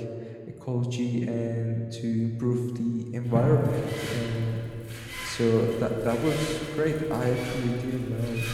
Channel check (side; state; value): both; identical; correlation 1.00